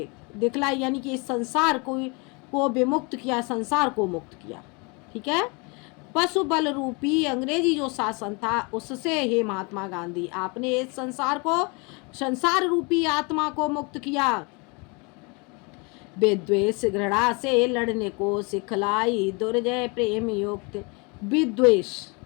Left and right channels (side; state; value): right; quieter; 30.4 dB